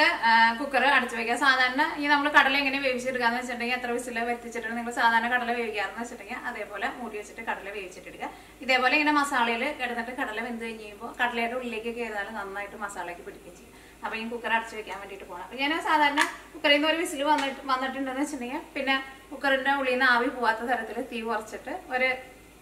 കുക്കർ അടച്ചു വയ്ക്കാം. സാധാരണ ഈ നമ്മൾ കടല എങ്ങനെ വേവിച്ചെടുക്കാന്ന് വെച്ചിട്ടുണ്ടെങ്കിൽ എത്ര വിസിൽ വറ്റിച്ചിട്ട് നിങ്ങൾ സാധാരണ കടല വേവിക്കാറെന്ന് വെച്ചിട്ടുണ്ടെങ്കിൽ അതേപോലെ മൂടി വെച്ചിട്ട് കടല വേവിച്ചിട്ടെടുക്കുക. ഇതേപോലെ ഇങ്ങനെ മസാലയിൽ കിടന്നിട്ട് കടല വെന്ത് കഴിയുമ്പോൾ കടലയുടെ ഉള്ളിലേക്ക് കയറിയാൽ നന്നായിട്ട് മസാലയ്ക്ക് പിടിക്കുകയും ചെയ്യും. അപ്പോൾ ഈ കുക്കർ അടച്ചു വെക്കാൻ വേണ്ടിയിട്ട് പോകണം. അപ്പോൾ ഞാൻ സാധാരണ കുക്കറിൽ നിന്ന് ഒരു വിസിൽ വന്നിട്ടുണ്ടെന്ന് വെച്ചിട്ടുണ്ടെങ്കിൽ പിന്നെ കുക്കറിന്റെ ഉള്ളിൽ നിന്ന് ആവി പോവാത്ത തരത്തിൽ തീ കുറച്ചിട്ട് ഒരു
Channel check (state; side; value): identical; both; correlation 1.00